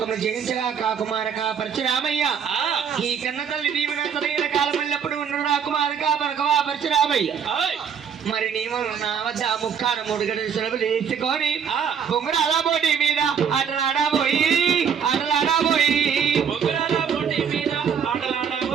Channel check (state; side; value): quieter; left; 7.3 dB